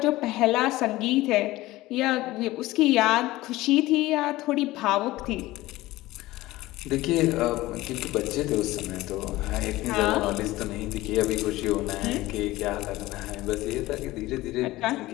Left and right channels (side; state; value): right; quieter; 18.0 dB